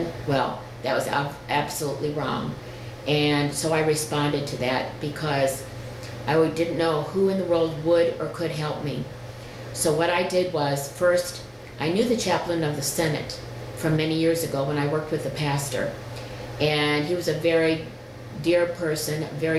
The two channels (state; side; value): identical; both; correlation 1.00